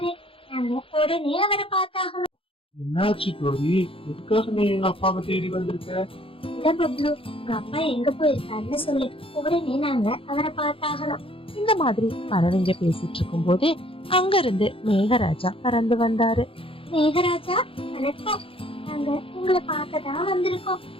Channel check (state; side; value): late; right; 0.26 ms